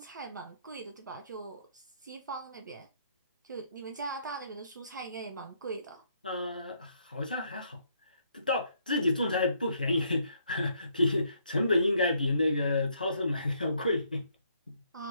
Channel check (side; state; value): both; inverted; correlation -0.71